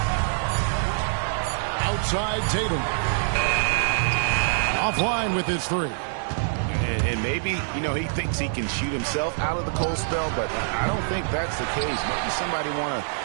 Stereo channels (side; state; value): left; silent; digital silence